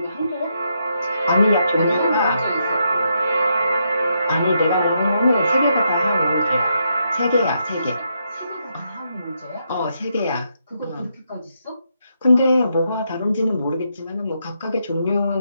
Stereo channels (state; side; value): inverted; both; correlation -0.79